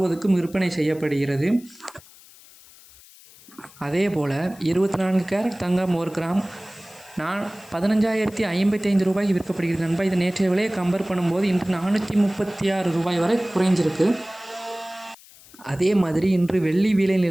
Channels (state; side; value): noise; left; hiss, 23 dB below the sound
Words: விற்பனை செய்யப்படுகிறது. அதேபோல் 24 கேரட் தங்கம் ஒரு கிராம் 15,055 ரூபாய்க்கு விற்கப்படுகிறது நண்பா. இது நேற்றைய விலையை கம்பேர் பண்ணும்போது இன்று 436 ரூபாய் வரை குறைஞ்சிருக்கு. அதே மாதிரி இன்று வெள்ளி விலை